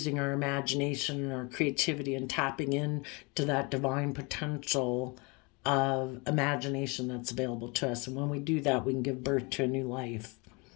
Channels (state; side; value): quieter; right; 29.0 dB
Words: our imagination and our creativity and tapping in to that divine potential of imagination that's available to us. And when we do that, we can give birth to a new life.